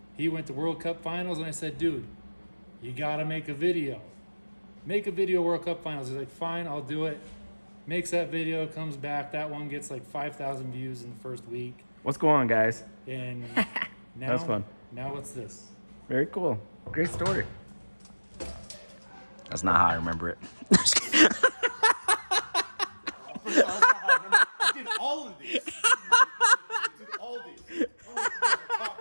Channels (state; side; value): inverted; both; correlation -1.00